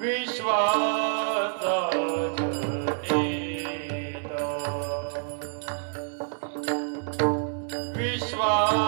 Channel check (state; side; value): silent; left; 60 dB below the other